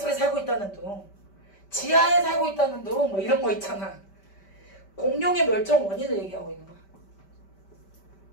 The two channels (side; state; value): right; late; 5.1 ms